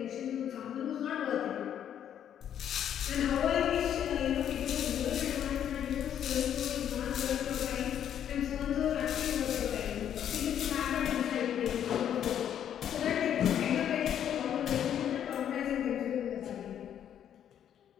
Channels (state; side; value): quieter; right; 9.7 dB